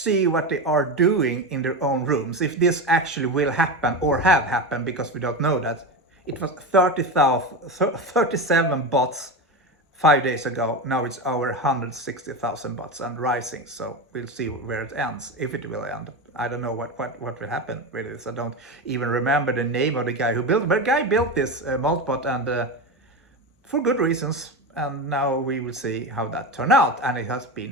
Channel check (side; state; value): both; normal; correlation 0.20